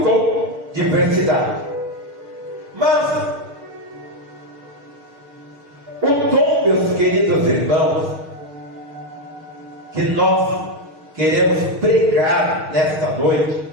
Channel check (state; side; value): late; left; 6.5 ms